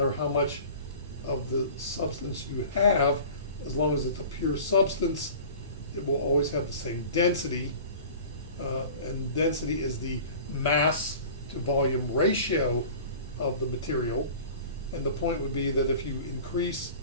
how much of the substance you have, as long as it's a pure substance, it will always have the same density. and density is the mass to volume ratio of the material. And the point would be that if you increase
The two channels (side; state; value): both; inverted; correlation -0.41